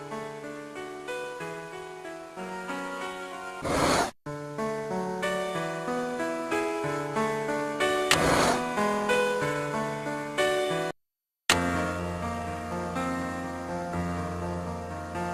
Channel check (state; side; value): identical; both; correlation 1.00